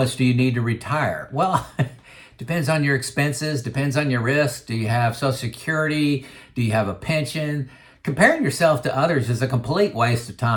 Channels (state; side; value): identical; both; correlation 1.00